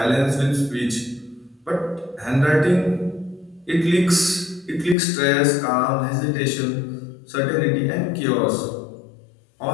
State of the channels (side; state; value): right; drops out; at 5.0 s